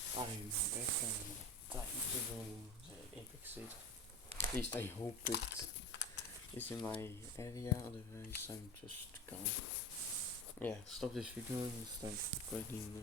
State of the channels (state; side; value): normal; both; correlation 0.30